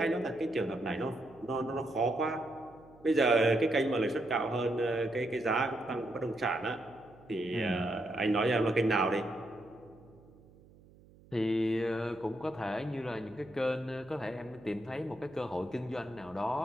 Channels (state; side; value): noise; right; hum, 25 dB below the sound